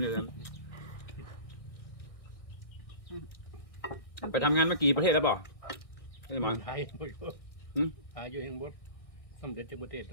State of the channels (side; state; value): right; late; 1.6 ms